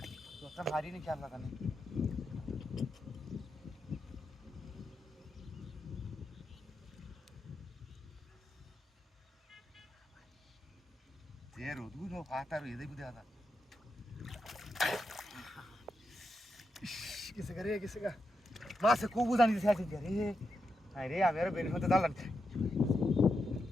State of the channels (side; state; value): both; normal; correlation 0.85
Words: তোটা ভারী নি খেয়াল লাগানে Zero, du no fatar e dei budada. Kise ga. Mas ko buzani dise ache re. Ai re amera beni hote dalan.